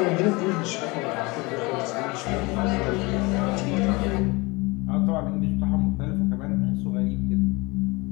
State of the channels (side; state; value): right; quieter; 25.0 dB